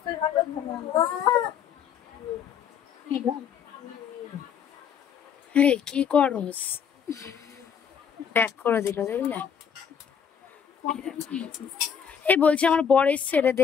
কি করস, ব্যাক করে দিল দেখলে। এই বলছি আমার বর এসছে রে,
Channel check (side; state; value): right; quieter; 7.6 dB